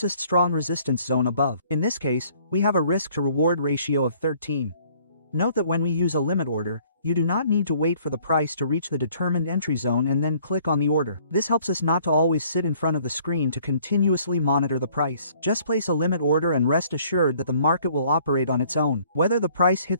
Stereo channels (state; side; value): inverted; both; correlation -0.59